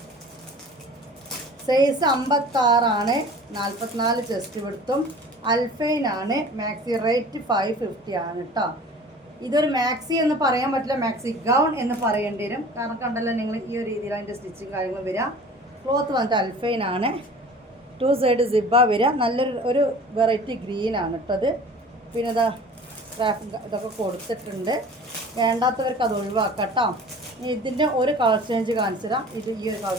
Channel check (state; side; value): normal; both; correlation 0.44